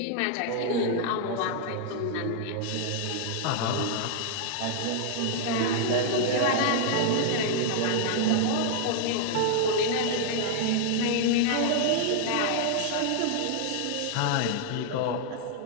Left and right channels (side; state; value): both; different; correlation 0.00